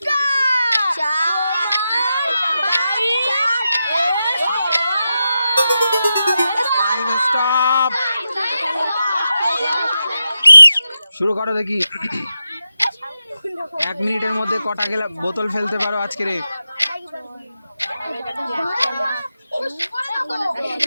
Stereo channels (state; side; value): inverted; both; correlation -0.89